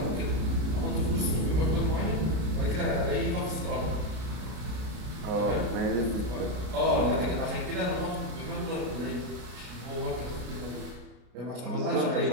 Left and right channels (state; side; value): late; left; 33 ms